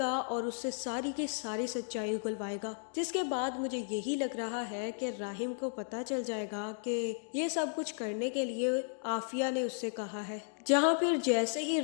और उससे सारी की सारी सच्चाई उगलवाएगा। जिसके बाद मुझे यही लग रहा है कि राहिम को पता चल जाएगा कि ये सब कुछ करने के लिए आफिया ने उससे कहा है। जहाँ फिर जैसे ही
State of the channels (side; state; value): right; silent; digital silence